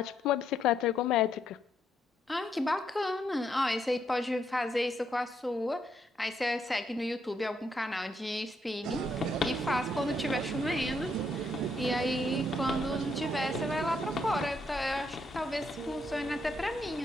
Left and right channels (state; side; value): normal; both; correlation 0.75